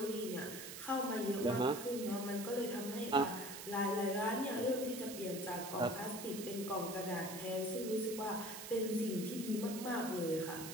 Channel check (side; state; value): right; noise; hiss, 9 dB below the sound